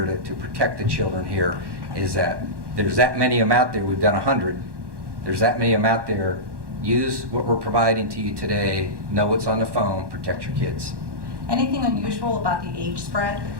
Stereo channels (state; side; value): late; left; 1.1 ms